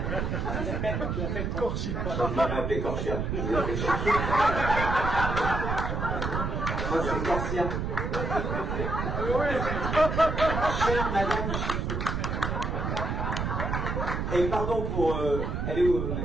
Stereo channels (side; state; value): right; noise; rumble, 2 dB below the sound